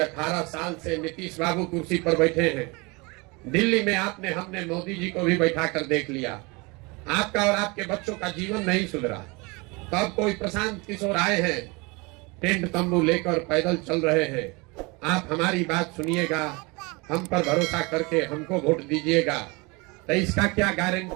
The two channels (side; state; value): left; quieter; 27.0 dB